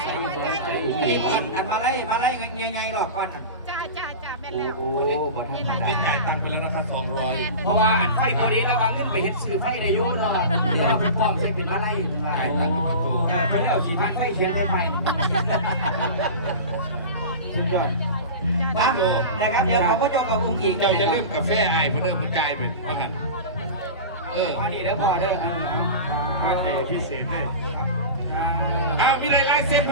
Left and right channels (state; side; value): inverted; both; correlation -0.30